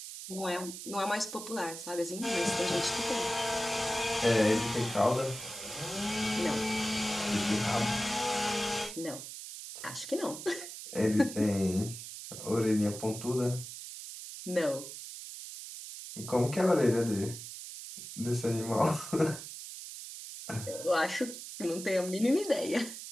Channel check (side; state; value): right; noise; hiss, 10 dB below the sound